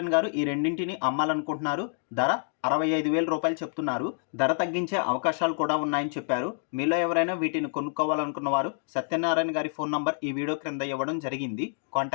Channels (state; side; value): silent; right; digital silence